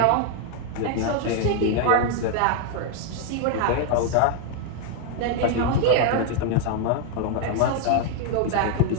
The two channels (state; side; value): different; both; correlation 0.00